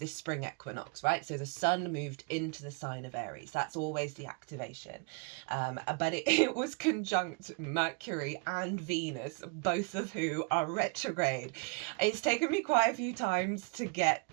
spring equinox, right? So the sun moved into the sign of Aries. That's always the activation. But it was conjunct Mercury and Venus, both of who are retrograde. It's taken me quite a few times to get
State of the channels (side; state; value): left; quieter; 33.3 dB